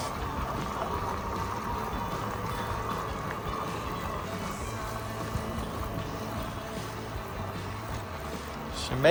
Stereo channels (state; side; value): identical; both; correlation 1.00